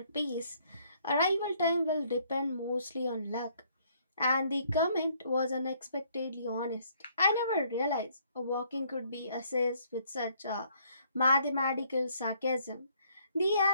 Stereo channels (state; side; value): inverted; both; correlation -0.66